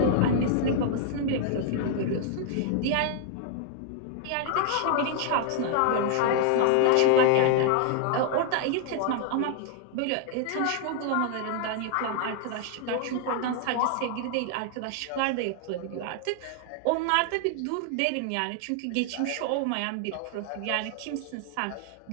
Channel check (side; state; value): both; different; correlation 0.00